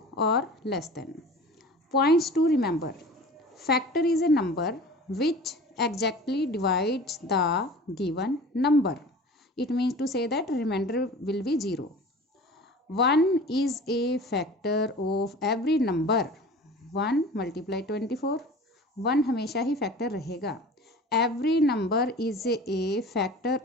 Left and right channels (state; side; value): normal; both; correlation 0.40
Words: or less than. Points to remember. Factor is a number which exactly divides the given number. It means to say that remainder will be 0. 1 is a factor of every number. 1 multiply 24. 1 हमेशा ही factor रहेगा. Every number is a factor